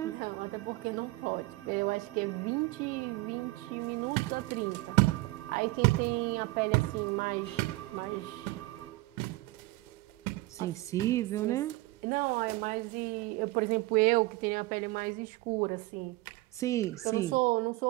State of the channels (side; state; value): left; quieter; 20.5 dB